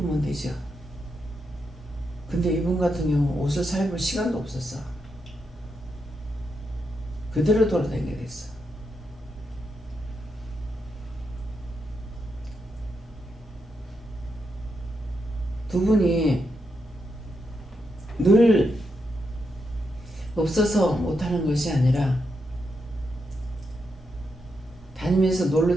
되죠. 근데 이분 같은 경우 옷을 사 입을 시간도 없었어. 그대로 돌아다니게 됐어. 두 분이 늘 없어서 못하는 것이 아니라 다니면서 놀러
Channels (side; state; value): both; normal; correlation 0.83